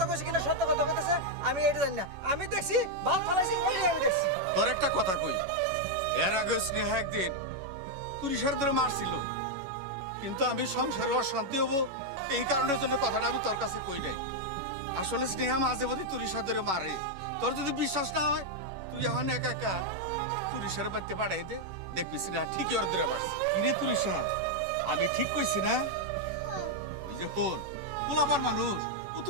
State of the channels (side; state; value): left; late; 11 ms